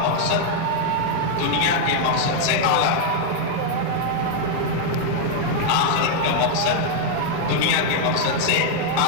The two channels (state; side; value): different; both; correlation 0.00